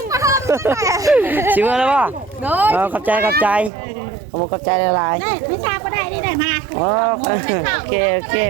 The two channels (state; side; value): drops out; left; at 3.7 s